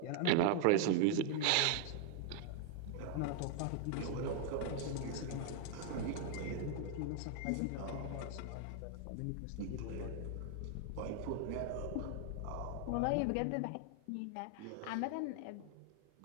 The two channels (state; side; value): different; both; correlation 0.00